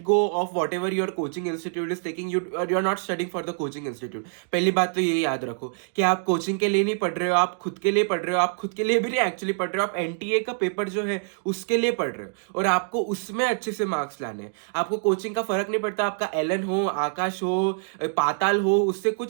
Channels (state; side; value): silent; left; digital silence